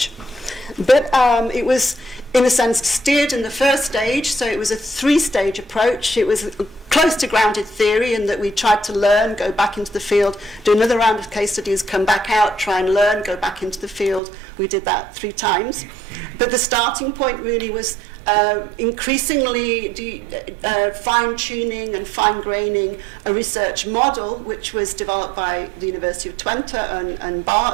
But it was, in a sense, steered in the first stage. So it was a three-stage approach. It was close to grounded theory in that we tried to learn, go back into the field, do another round of case studies, come back out, try and learn, go back into the field. We did that 3 times. But the starting point really was increasingly fine-tuning and fine-graining a research model, which was developed by the University of Twente and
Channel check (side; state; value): left; drops out; at 14.2 s